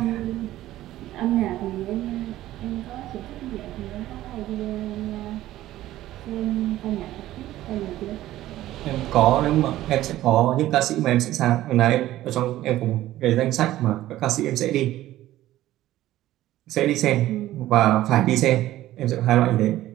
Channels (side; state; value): left; quieter; 14.7 dB